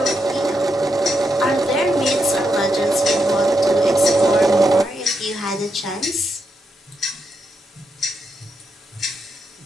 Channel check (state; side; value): normal; both; correlation 0.83